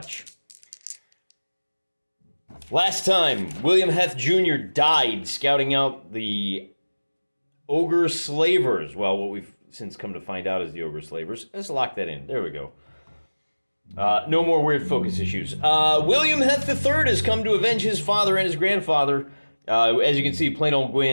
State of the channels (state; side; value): inverted; both; correlation -1.00